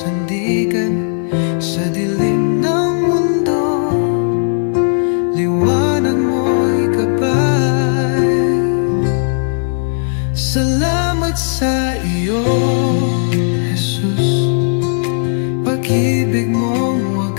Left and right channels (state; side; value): silent; right; 57 dB below the other